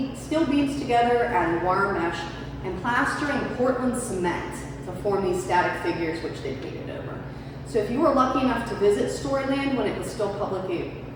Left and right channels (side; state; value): both; identical; correlation 1.00